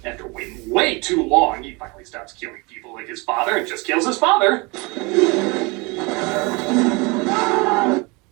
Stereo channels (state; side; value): quieter; left; 27.2 dB